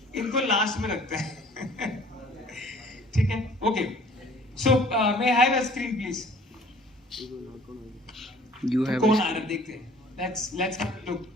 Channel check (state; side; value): normal; both; correlation 0.52